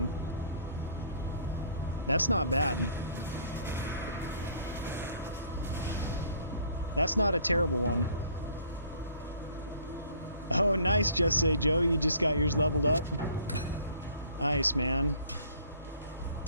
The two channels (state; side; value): inverted; both; correlation -0.56